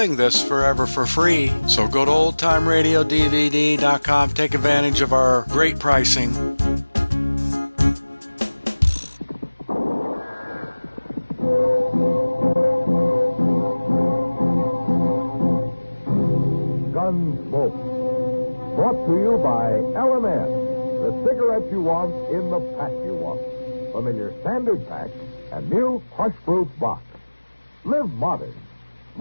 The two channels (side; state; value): both; inverted; correlation -1.00